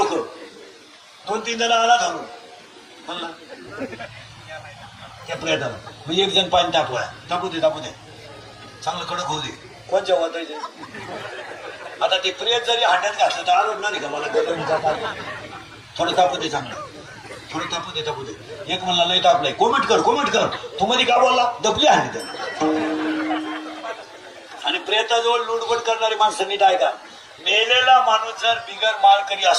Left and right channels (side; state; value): both; identical; correlation 1.00